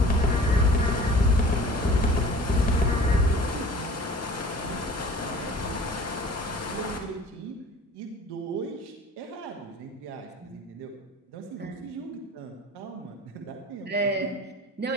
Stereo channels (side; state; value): both; normal; correlation 0.45